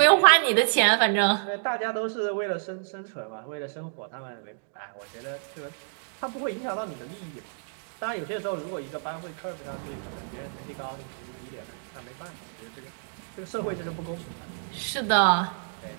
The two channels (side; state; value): left; silent; digital silence